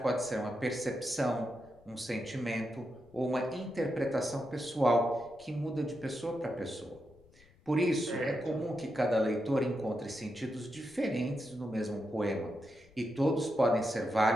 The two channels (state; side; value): noise; left; rumble, 28 dB below the sound